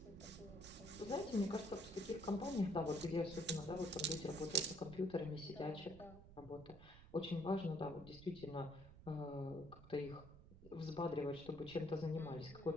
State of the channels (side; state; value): right; noise; rumble, 18 dB below the sound